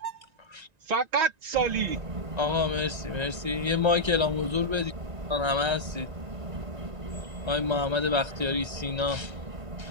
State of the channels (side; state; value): left; late; 1.9 ms